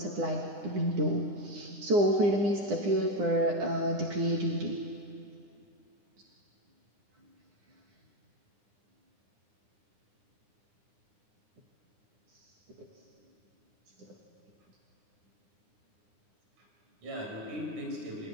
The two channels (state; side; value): late; left; 9.8 ms